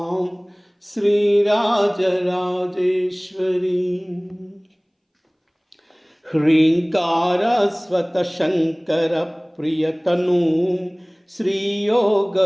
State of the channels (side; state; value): both; identical; correlation 1.00